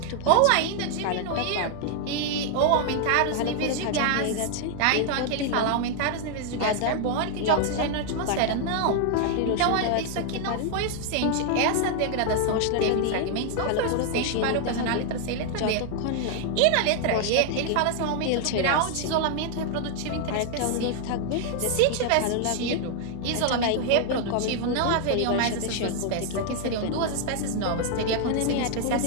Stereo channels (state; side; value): different; both; correlation 0.00